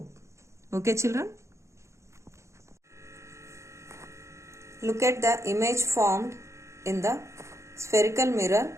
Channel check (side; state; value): left; late; 0.14 ms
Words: Okay, children? Look at the image formed in the spherical mirror.